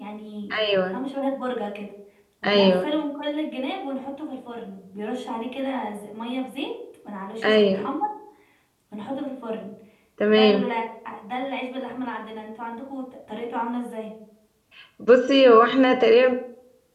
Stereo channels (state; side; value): identical; both; correlation 1.00